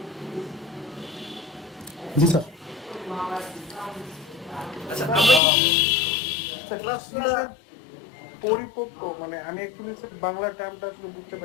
জি স্যার। আচ্ছা, আমরা পরিপক্ক মানে আমি অ্যাকচুয়ালি বাংলা টার্মটা আসলে বুঝতে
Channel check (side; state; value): right; drops out; at 5.4 s